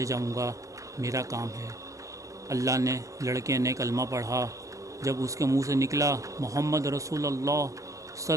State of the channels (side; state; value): left; late; 0.16 ms